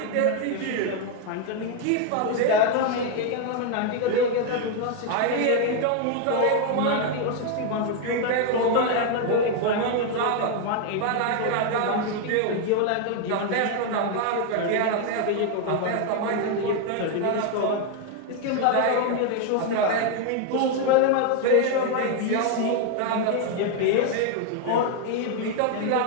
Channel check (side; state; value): both; different; correlation 0.01